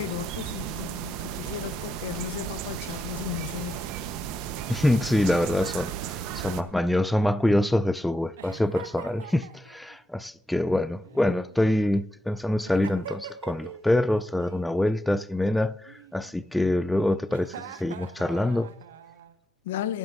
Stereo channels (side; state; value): both; normal; correlation 0.85